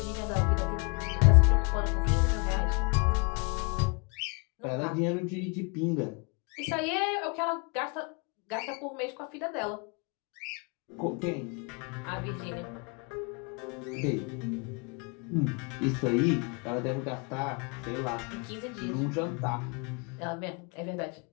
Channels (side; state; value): right; quieter; 33.0 dB